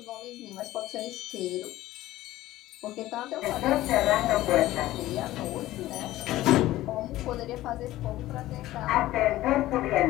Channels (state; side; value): quieter; right; 15.8 dB